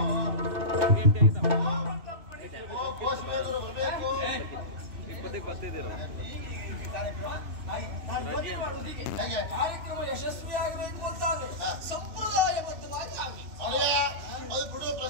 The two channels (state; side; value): late; left; 3.0 ms